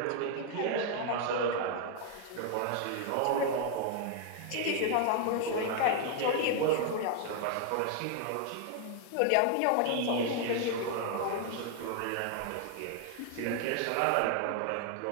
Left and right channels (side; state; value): both; different; correlation 0.00